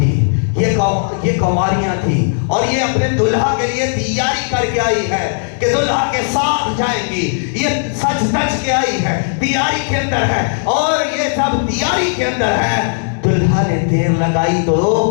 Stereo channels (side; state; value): right; silent; digital silence